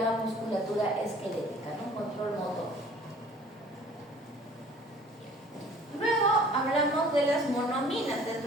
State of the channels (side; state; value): both; normal; correlation 0.51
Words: musculatura esquelética, ¿no? Control motor. Luego hablamos de las monoaminas.